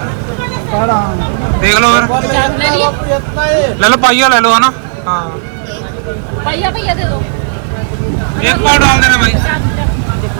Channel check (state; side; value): silent; left; digital silence